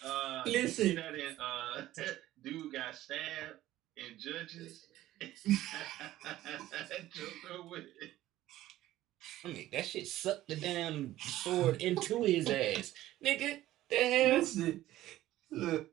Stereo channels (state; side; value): quieter; left; 14.8 dB